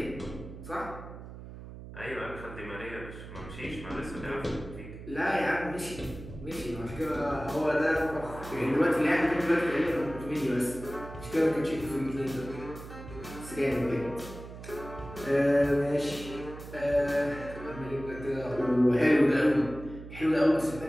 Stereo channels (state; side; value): noise; right; hum, 13 dB below the sound